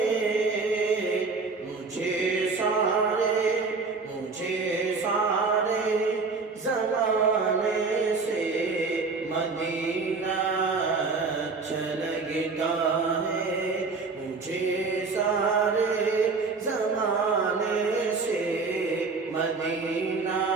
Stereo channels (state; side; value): quieter; left; 4.3 dB